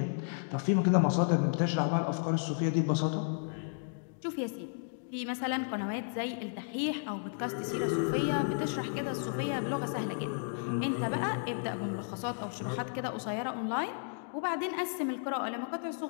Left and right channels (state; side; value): silent; right; digital silence